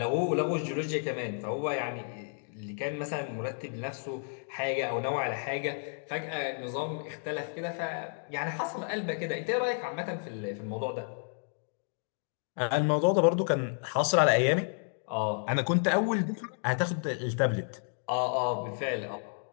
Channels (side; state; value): right; silent; 57 dB below the other